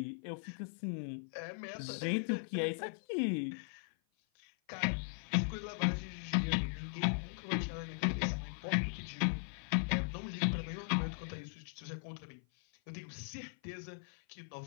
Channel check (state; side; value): silent; right; 52 dB below the other